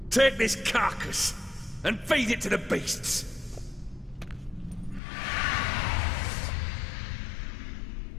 take this carcass and feed it to the beasts.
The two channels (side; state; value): right; drops out; at 5.0 s